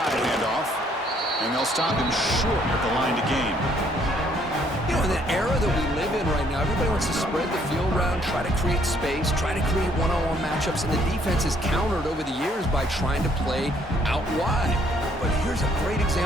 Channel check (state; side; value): normal; both; correlation 0.66